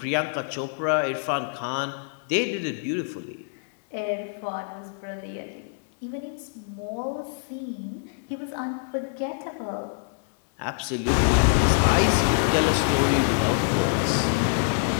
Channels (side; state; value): right; silent; digital silence